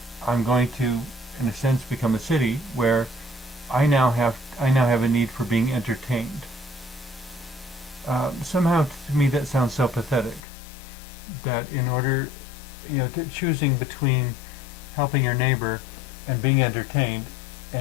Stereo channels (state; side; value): drops out; right; at 10.4 s